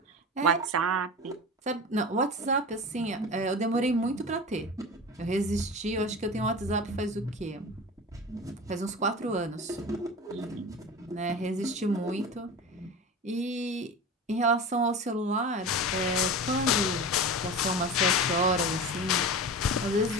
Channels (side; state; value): both; normal; correlation 0.30